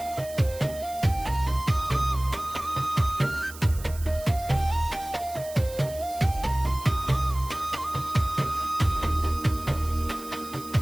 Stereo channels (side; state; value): right; noise; hiss, 16 dB below the sound